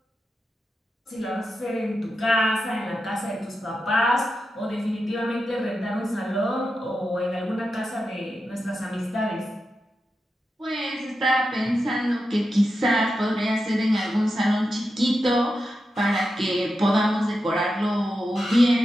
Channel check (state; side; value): normal; both; correlation 0.89